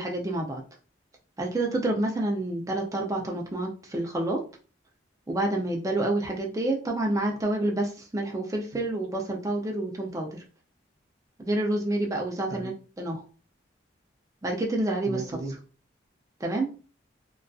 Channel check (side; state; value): both; normal; correlation 0.64